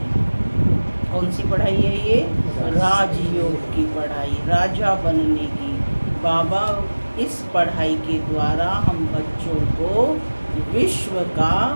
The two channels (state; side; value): inverted; both; correlation -1.00